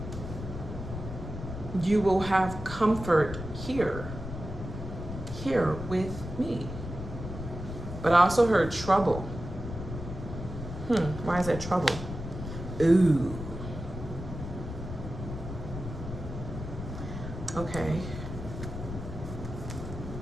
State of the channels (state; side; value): noise; left; rumble, 8 dB below the sound